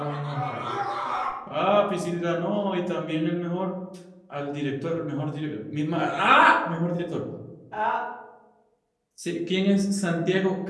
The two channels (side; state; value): both; identical; correlation 1.00